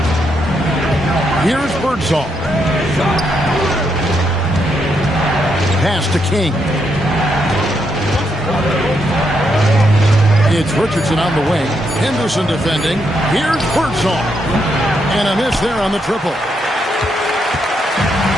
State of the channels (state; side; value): normal; both; correlation 0.79